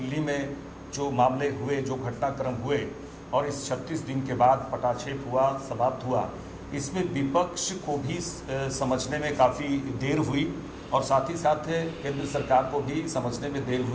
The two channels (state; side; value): identical; both; correlation 1.00